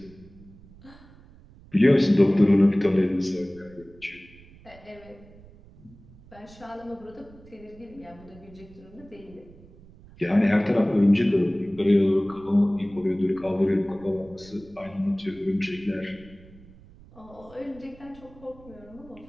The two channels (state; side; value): noise; right; rumble, 23 dB below the sound